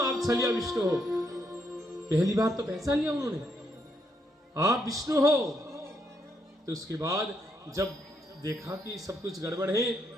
आप छलिया विष्णु हो। पहली बार तो पहचान लिया उन्होंने, आप विष्णु हो। तो उसके बाद जब देखा कि सब कुछ गड़बड़ है,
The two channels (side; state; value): both; normal; correlation 0.77